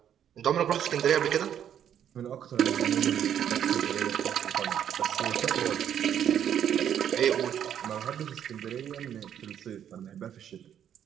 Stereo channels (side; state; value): left; quieter; 9.6 dB